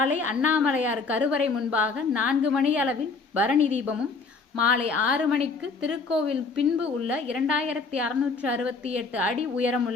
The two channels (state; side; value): quieter; right; 4.3 dB